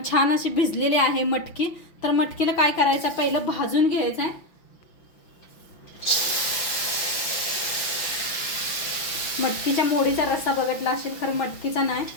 छान अशी भिजलेली आहे मटकी। तर मटकीला काय करायचं, पहिलं भाजून घ्यायचं आहे। मटकीच्या मोडीचा रस्सा बघितला असेल, खरं मटकीचा नाही।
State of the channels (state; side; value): late; right; 5.9 ms